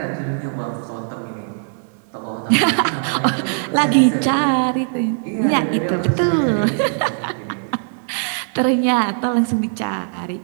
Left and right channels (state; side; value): silent; left; digital silence